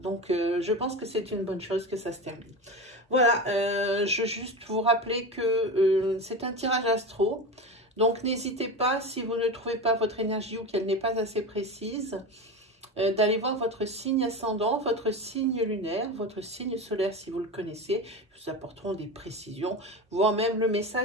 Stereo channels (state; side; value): normal; both; correlation 0.24